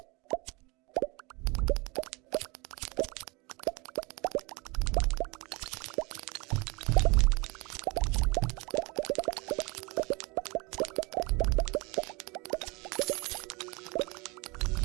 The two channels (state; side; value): quieter; left; 26.8 dB